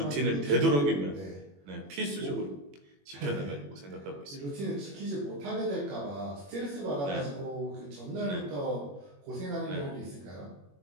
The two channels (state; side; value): late; left; 21 ms